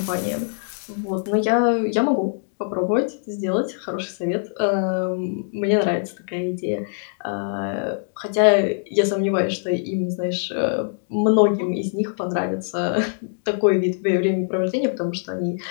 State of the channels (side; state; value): right; silent; digital silence